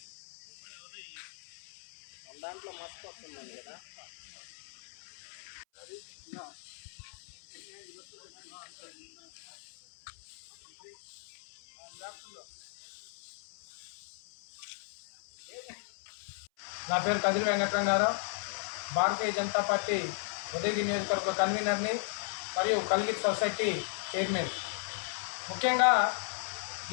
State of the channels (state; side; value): silent; right; 54 dB below the other